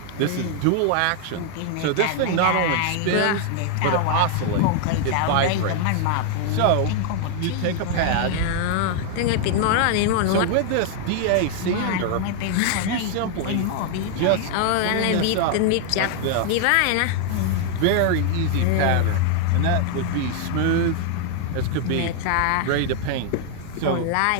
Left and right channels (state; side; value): different; both; correlation 0.00